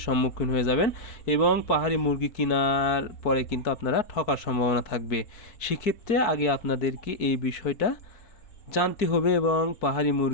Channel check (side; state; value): right; late; 4.6 ms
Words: সম্মুখীন হয়ে যাবেন এবং পাহাড়ি মুরগি কেনার পরে কিন্তু আপনারা ঠকার সম্ভাবনা থাকবে। সেক্ষেত্রে আগে আপনাদেরকে এই বিষয়টা জানতে হবে এবং পাহাড়ি